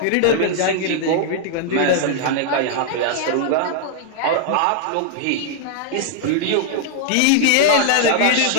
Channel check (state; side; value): different; both; correlation -0.01